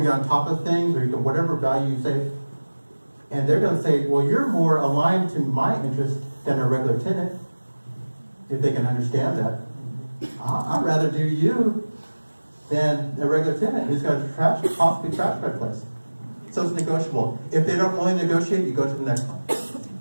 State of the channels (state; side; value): inverted; both; correlation -1.00